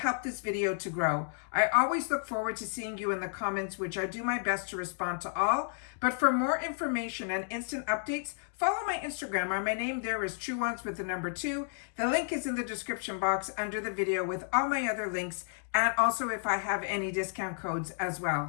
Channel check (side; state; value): right; silent; digital silence